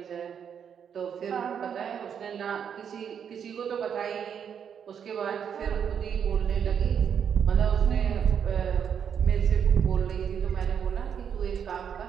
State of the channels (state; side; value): quieter; left; 7.8 dB